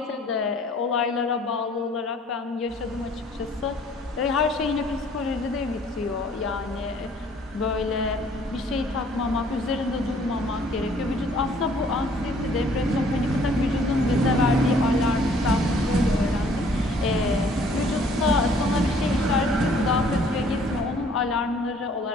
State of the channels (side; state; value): both; normal; correlation 0.58